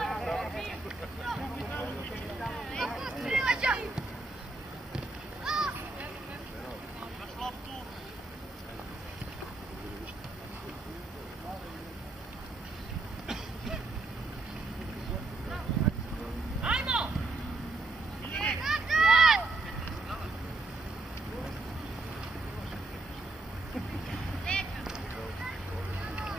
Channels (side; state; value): left; quieter; 3.1 dB